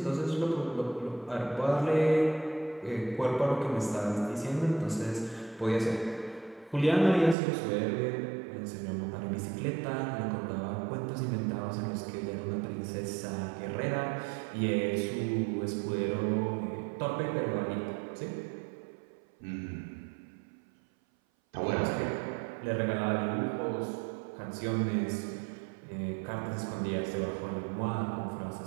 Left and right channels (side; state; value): left; drops out; at 7.4 s